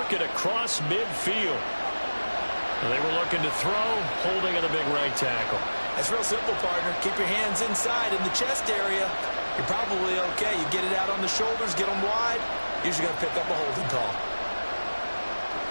it across midfield. They were looking to throw, holding at a big right tackle. It's real simple, partner. Keep your hands inside in the chest area. You're probably okay. You get it out on the shoulders, get them wide. Usually going to pick up a holding call.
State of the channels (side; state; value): both; inverted; correlation -1.00